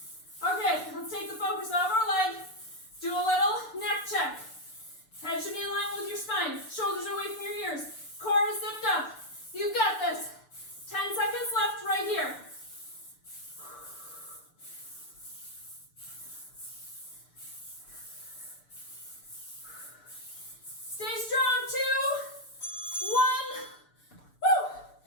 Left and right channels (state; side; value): late; right; 6.8 ms